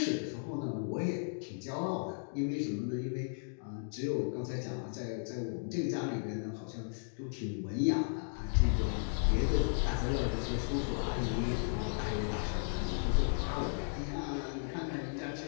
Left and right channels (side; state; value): right; silent; digital silence